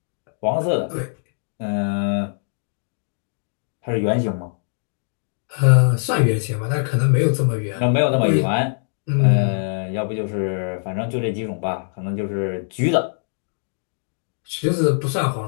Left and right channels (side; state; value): right; silent; digital silence